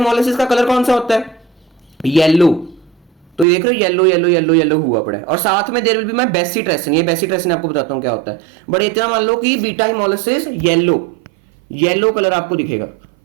का कलर कौन सा होता है? येलो। तो देख रहे हो येलो येलो येलो येलो हुआ पड़ा है, और साथ में there will be my bacitracin. ये बेसिट्रेसिन आपको बताता हूं क्या होता है, बट इतना मान लो कि बीटा हिमोलिसिस येलो कलर आपको दिखेगा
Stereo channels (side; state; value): left; drops out; at 3.5 s